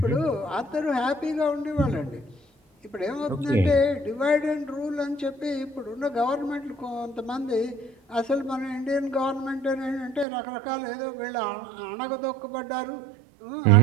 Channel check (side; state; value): left; drops out; at 10.2 s